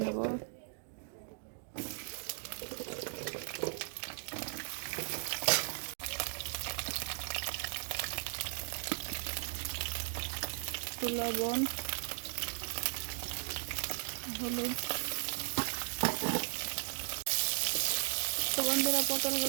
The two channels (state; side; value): silent; left; digital silence